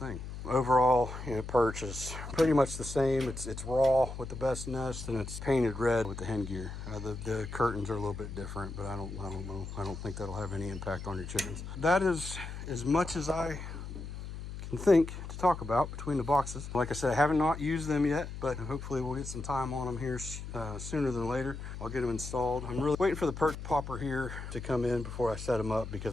Overall, perch is pretty much the same. It's raw with the Best Nest, and it's painted red with the HenGear. The curtains are a little bit different, but I don't know. I don't think that'll have any impact on your chickens. That is as much as I can think to talk about between the boxes. Like I said, I have not used them yet, but hopefully we'll get some time on them here sooner than later. I'll get them installed. I'm really waiting for the perch popper here to come in before I set them up,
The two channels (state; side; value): noise; left; hum, 9 dB below the sound